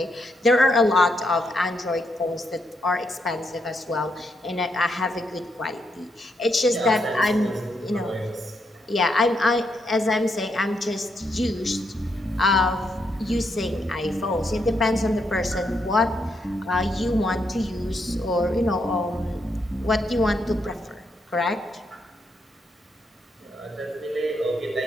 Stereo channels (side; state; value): both; normal; correlation 0.79